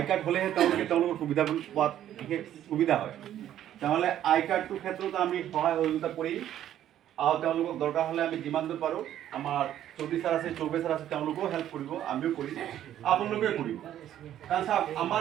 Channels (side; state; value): left; quieter; 11.5 dB